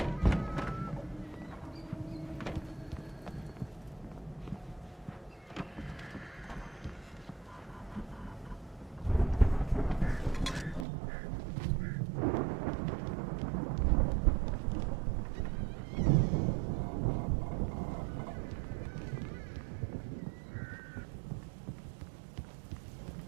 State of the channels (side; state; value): left; drops out; at 10.9 s